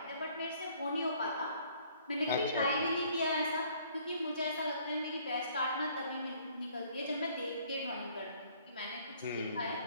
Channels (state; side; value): inverted; both; correlation -0.60